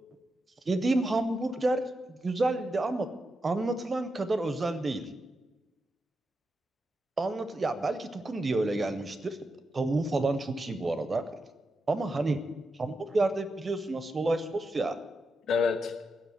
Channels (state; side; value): normal; both; correlation 0.87